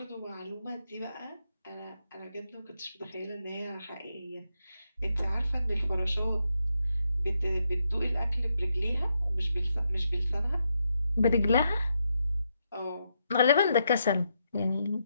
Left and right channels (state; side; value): inverted; both; correlation -0.81